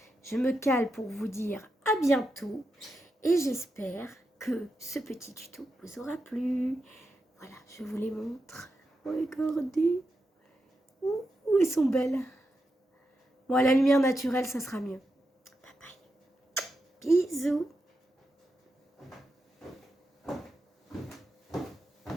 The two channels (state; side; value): normal; both; correlation 0.87